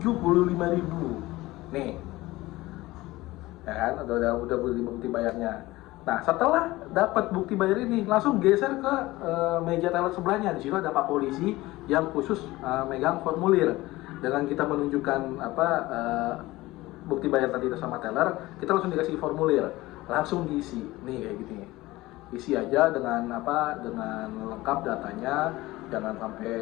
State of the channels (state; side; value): quieter; right; 18.9 dB